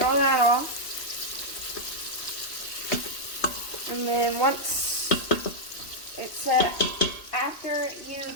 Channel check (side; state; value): right; late; 3.0 ms